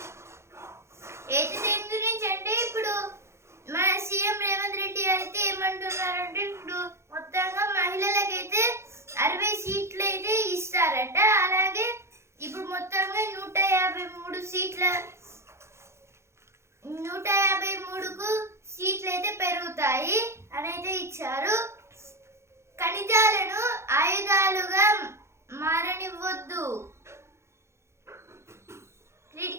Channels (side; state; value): left; late; 0.13 ms